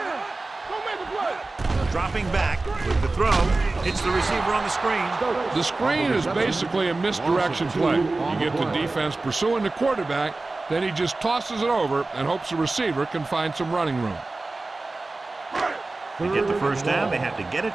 Don't make a play. Dropping back with the throw. It's the receiver on the screen. The screen is basically a misdirection play. You get the defense pursuing the quarterback, then he just tosses it over and hopes the receiver can find some running room. To get the first down, they have to get it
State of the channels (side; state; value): left; quieter; 3.3 dB